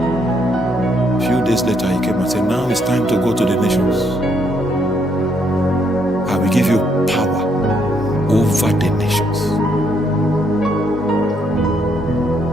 A few days later, he came and said, now it's time to go to the nations. I will give you power over the nations.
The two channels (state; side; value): normal; both; correlation 0.73